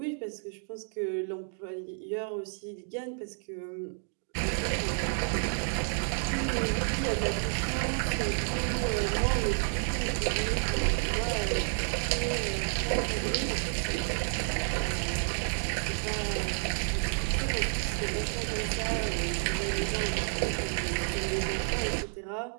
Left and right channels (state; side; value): silent; left; 56 dB below the other